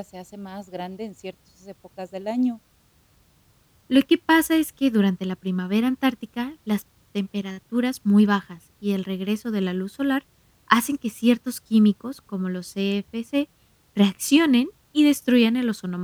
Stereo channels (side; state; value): both; identical; correlation 1.00